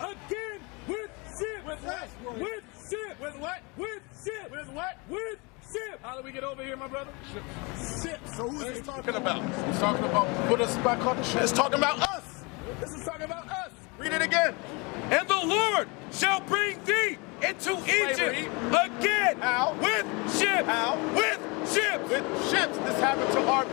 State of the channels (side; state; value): right; quieter; 28.6 dB